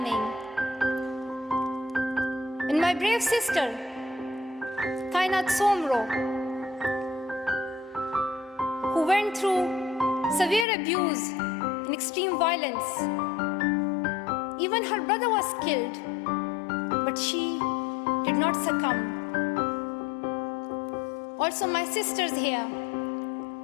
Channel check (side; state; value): right; drops out; at 10.7 s